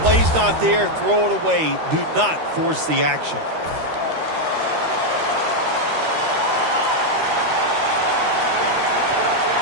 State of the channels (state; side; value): late; left; 13 ms